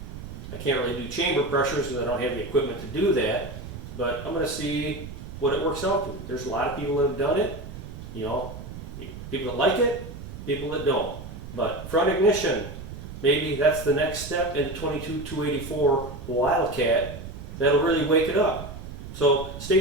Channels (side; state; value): right; noise; rumble, 11 dB below the sound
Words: I can't really do chamber pressures because I don't have the equipment to do that, but I'm going to see what it works out to. There's a lot of people that have done it, you know, people that like it, people that don't. But front ignition, maybe that's the next step in the 22-284 Wildcat that'll really wake it up. So